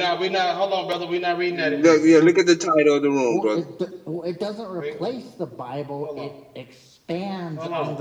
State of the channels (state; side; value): identical; both; correlation 1.00